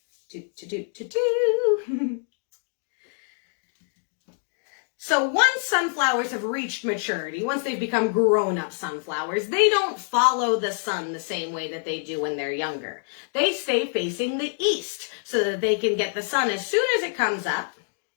So once sunflowers have reached maturity, once they've become grown-up sunflowers, they don't follow the sun the same way that they do when they're younger. They stay facing the east so that they can get the sun as soon as it comes up.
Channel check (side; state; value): right; silent; 61 dB below the other